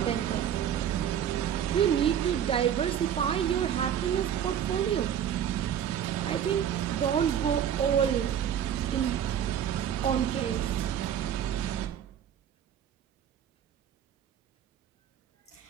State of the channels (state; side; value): quieter; left; 9.4 dB